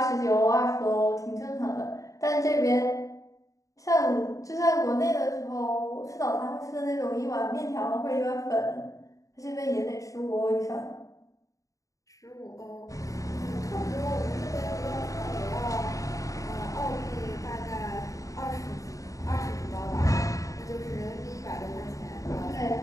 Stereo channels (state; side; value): late; right; 0.16 ms